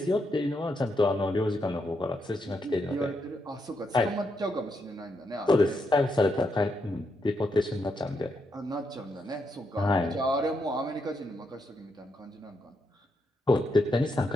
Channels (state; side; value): normal; both; correlation 0.81